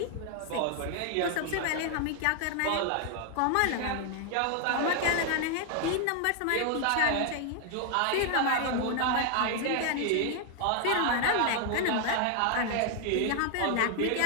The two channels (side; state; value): both; different; correlation 0.00